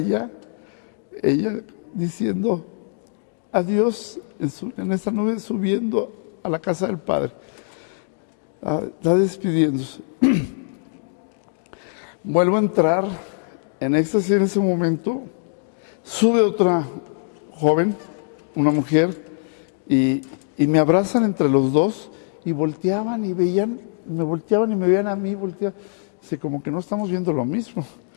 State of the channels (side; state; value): right; silent; digital silence